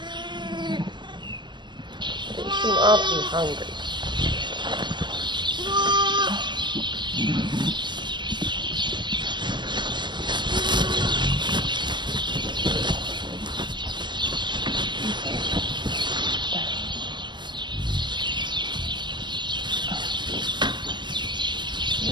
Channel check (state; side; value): late; left; 0.22 ms